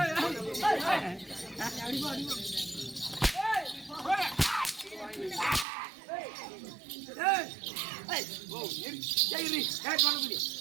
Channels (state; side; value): drops out; left; at 5.7 s